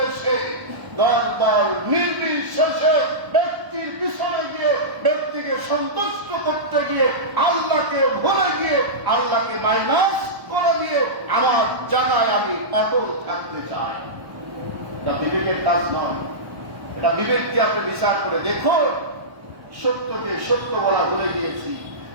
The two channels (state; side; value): late; left; 1.2 ms